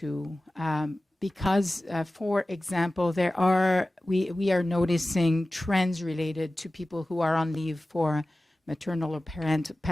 because, for example, we are noticing trends related to people who are on leave for maternal or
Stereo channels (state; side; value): normal; both; correlation 0.96